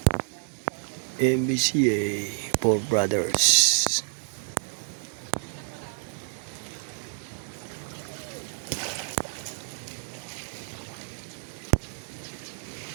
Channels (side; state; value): left; silent; 59 dB below the other